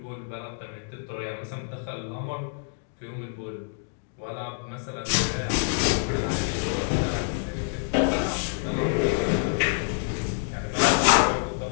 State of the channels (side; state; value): right; silent; 60 dB below the other